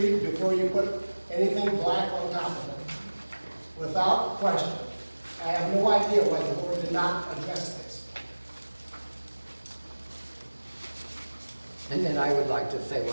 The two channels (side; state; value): both; inverted; correlation -1.00